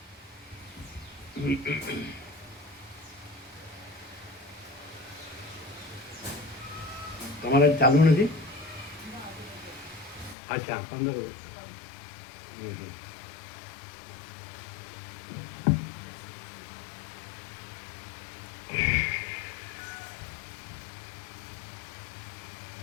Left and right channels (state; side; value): drops out; right; at 10.4 s